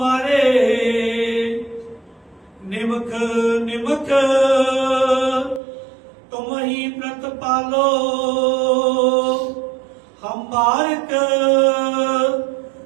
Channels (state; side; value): drops out; left; at 5.6 s